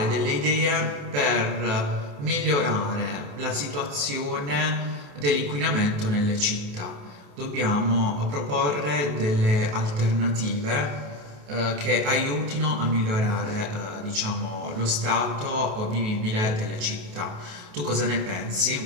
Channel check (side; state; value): left; late; 28 ms